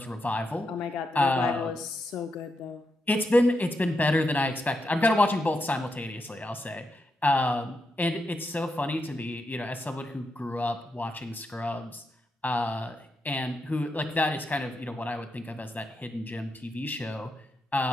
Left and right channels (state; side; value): normal; both; correlation 0.84